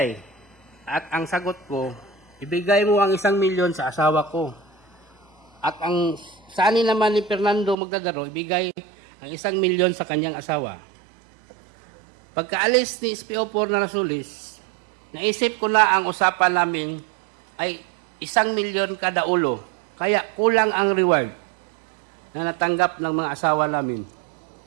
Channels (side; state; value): left; drops out; at 7.8 s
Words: At ang sagot ko, ibigay mo ang 1 milyon sa asawa ko. At ang saan naman ni Fernando Magdadaro, ibigay ang 1 milyon sa kanyang asawa. Pagkaalis ni SPO4 Narsoles, naisip ko na ang usapan namin ay 1 milyon kada ulo. Kaya kulang ang reward na natanggap ng mga asawa namin.